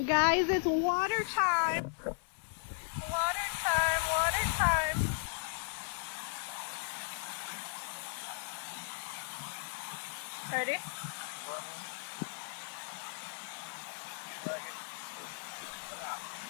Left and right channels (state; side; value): silent; right; 54 dB below the other